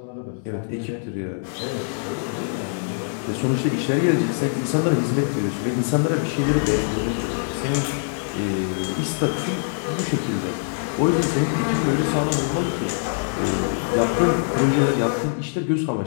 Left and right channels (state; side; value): silent; right; digital silence